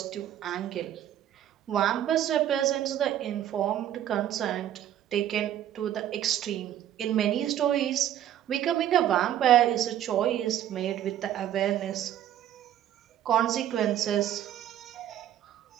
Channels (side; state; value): left; quieter; 11.4 dB